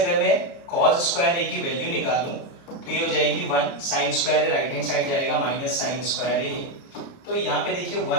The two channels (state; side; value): late; right; 30 ms